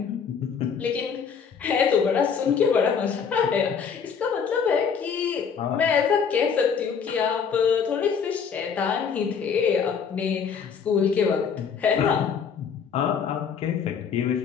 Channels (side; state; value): right; quieter; 6.6 dB